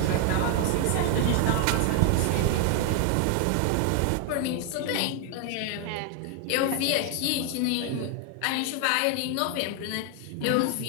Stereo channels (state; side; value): different; both; correlation 0.00